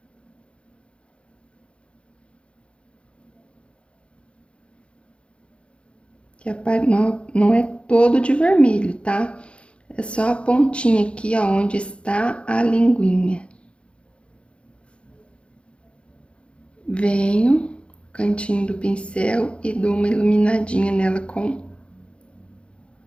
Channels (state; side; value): late; right; 0.058 ms